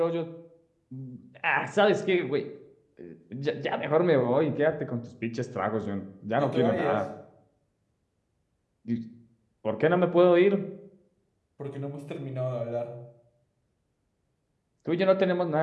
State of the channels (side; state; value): both; identical; correlation 1.00